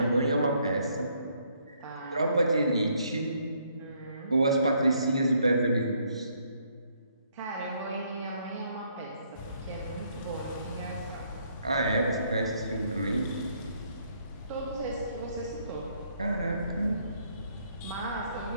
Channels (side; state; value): both; inverted; correlation -0.69